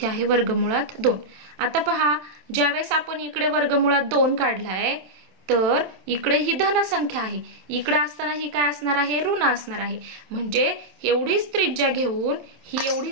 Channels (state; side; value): late; left; 27 ms